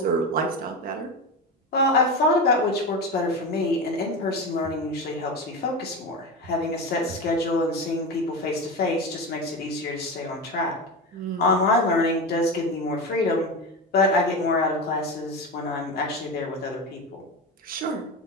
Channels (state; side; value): normal; both; correlation 0.22